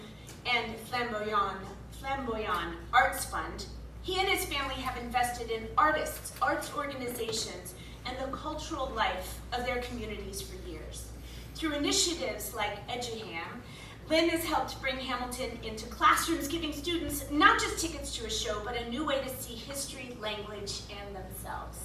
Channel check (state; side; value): identical; both; correlation 1.00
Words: and Flamboyant Arts Fund, he and his family have invested in artists, arts organizations, and the cultural life of their communities for years. Through initiatives like EduHam, Lin has helped bring Hamilton into classrooms, giving students not just tickets to a show, but a new way to see history, language, and